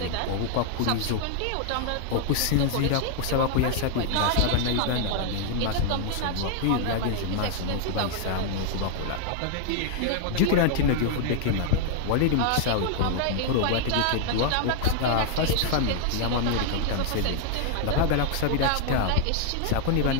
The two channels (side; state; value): both; different; correlation 0.00